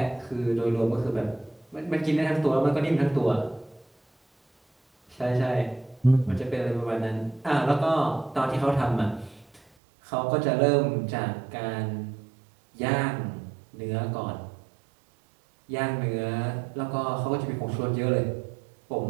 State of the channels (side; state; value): left; drops out; at 9.6 s